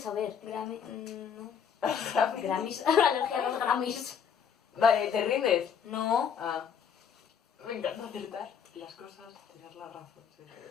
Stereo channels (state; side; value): quieter; right; 7.5 dB